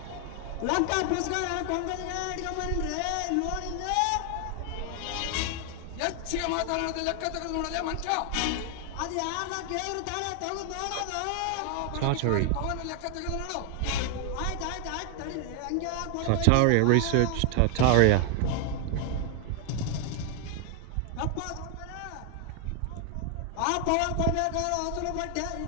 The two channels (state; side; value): different; both; correlation 0.00